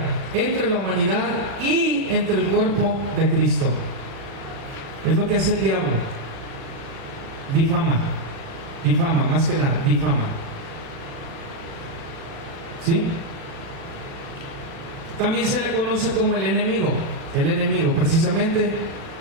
entre la humanidad y entre el cuerpo de Cristo. Es lo que hace el diablo. Difama, más que nada, difama. ¿Sí? También se le conoce como el enemigo. El enemigo, precisamente,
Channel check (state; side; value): late; left; 36 ms